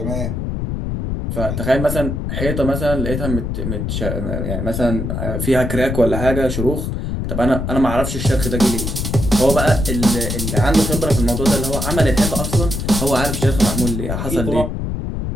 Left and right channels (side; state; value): left; noise; rumble, 3 dB below the sound